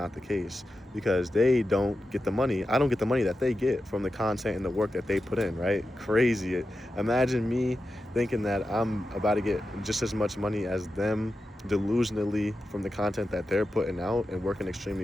the case, because they don't get the money. I don't get the money that they get from the content and the work that they put in, right? Crazy. Imagine me thinking that I'm about to get just as much money as them delusionally from the content that they're putting out and working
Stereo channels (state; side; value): normal; both; correlation 0.91